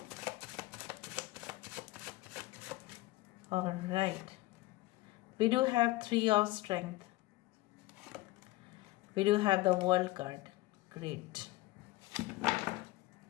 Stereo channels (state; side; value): quieter; right; 18.9 dB